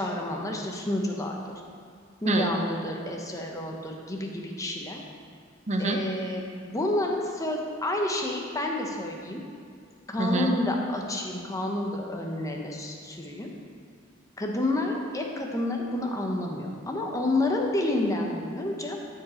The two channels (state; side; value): normal; both; correlation 0.58